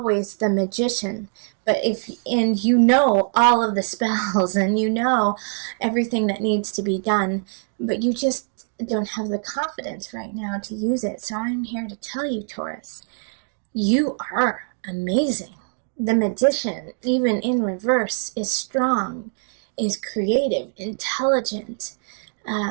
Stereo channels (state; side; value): silent; left; 63 dB below the other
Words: the magician. But you know all of the spells, and you know everything that needs to be done, but you just don't have the confidence right now to use it. So I'm here to tell you, Taurus, you are amazing. The magician, even in reverse, is strong, is creative, intelligent,